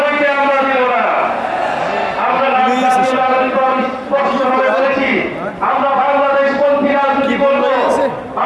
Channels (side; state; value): both; identical; correlation 1.00